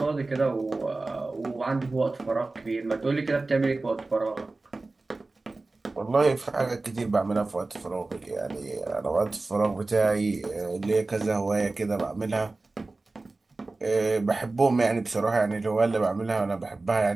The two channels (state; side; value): quieter; left; 3.3 dB